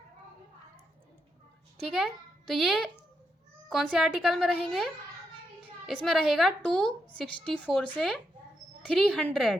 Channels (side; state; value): both; normal; correlation 0.82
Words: ठीक है, तो ये कौन से आर्टिकल में रहेंगे, इसमें रहेगा 264 से